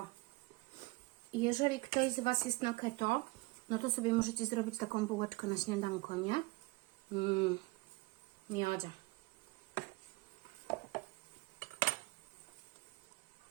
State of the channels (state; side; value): quieter; left; 23.6 dB